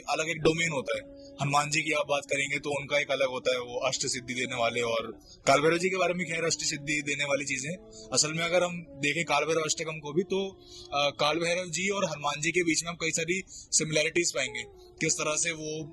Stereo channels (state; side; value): identical; both; correlation 1.00